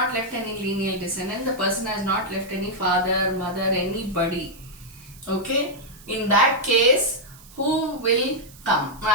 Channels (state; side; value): noise; right; hiss, 22 dB below the sound